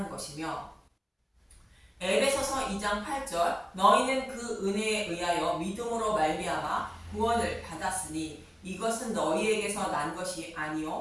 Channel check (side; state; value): both; identical; correlation 1.00